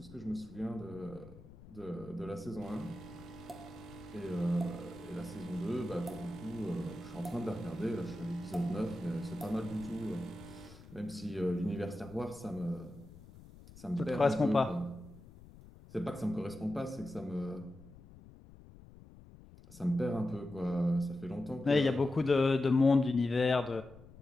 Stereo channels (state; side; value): noise; left; rumble, 20 dB below the sound